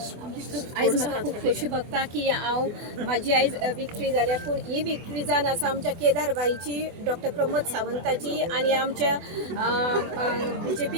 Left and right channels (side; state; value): left; late; 24 ms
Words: आयज म्हाका खूब खोशी भोगता की हांव म्हाजी आयज विक्ट्री जाल्या पूण ही विक्ट्री जावन आसा आमच्या केदार बाईची, डॉक्टर प्रमोद सावंताची आनी आमच्या